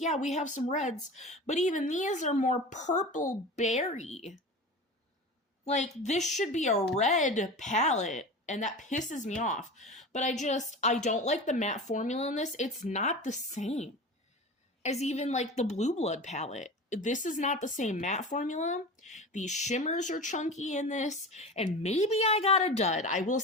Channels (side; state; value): both; normal; correlation 0.31